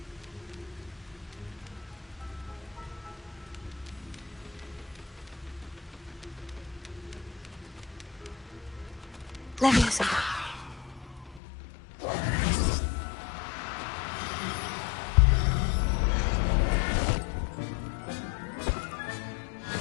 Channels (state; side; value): drops out; right; at 11.4 s